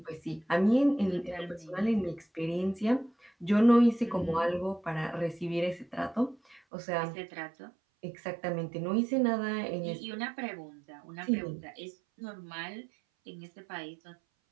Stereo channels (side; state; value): left; drops out; at 6.6 s